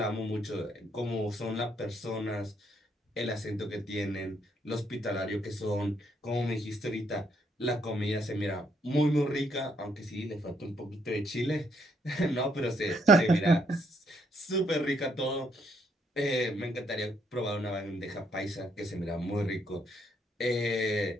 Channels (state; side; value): normal; both; correlation 0.72